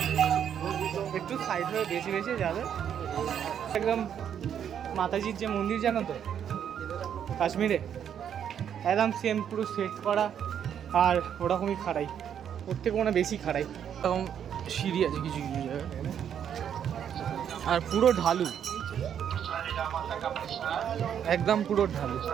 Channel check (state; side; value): quieter; left; 8.9 dB